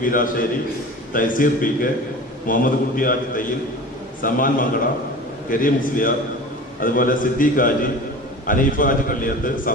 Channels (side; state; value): both; normal; correlation 0.37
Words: വീരാശ്ശേരി, തൈസീർ PK, മുഹമ്മദ് കുട്ടി ഹാജി തയ്യിൽ, സമാൻ മങ്കട, കരീം മുസ്ലിയാർ, അതുപോലെ Siddique Haji, Aneefa Haji Kalliyath,